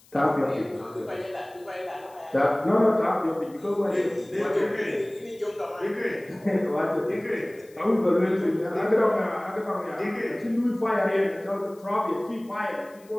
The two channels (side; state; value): left; noise; hiss, 28 dB below the sound